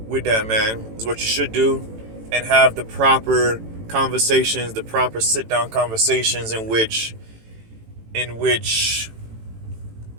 with that man is what you should do, and have the proper conversations, the proper sit down conversations in which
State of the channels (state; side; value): late; left; 18 ms